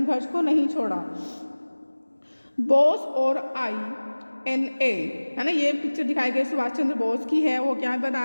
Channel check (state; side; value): inverted; both; correlation -1.00